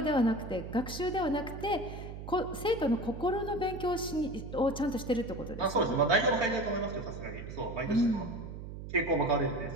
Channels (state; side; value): noise; right; hum, 10 dB below the sound